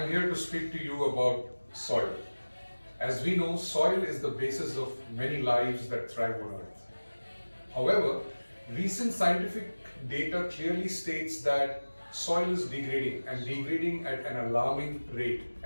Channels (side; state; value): both; inverted; correlation -1.00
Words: here to speak to you about soil. As we know, soil is the basis of many lives that thrive on earth. However, recent scientific data clearly states that soil is degrading and degrading at an alarming rate.